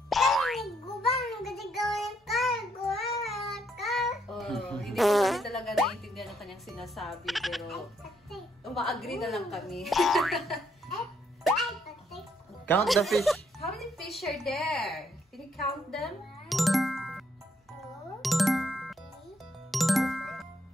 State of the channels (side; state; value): both; normal; correlation 0.73